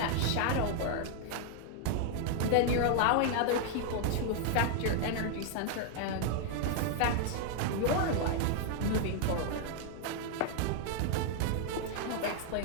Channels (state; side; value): different; both; correlation 0.00